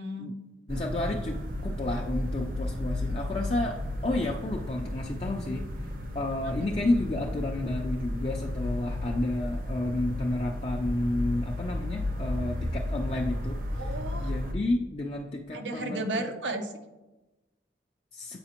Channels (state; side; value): normal; both; correlation 0.81